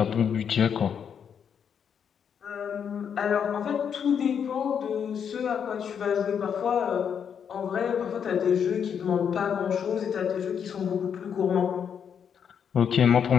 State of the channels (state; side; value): quieter; right; 7.7 dB